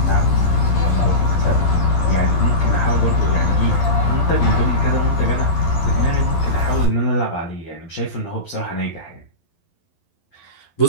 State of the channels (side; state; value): right; late; 12 ms